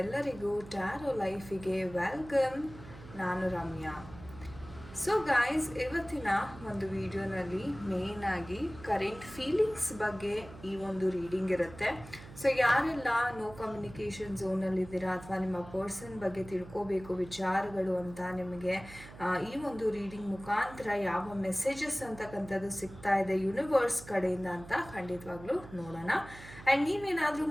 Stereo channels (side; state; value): right; noise; hum, 16 dB below the sound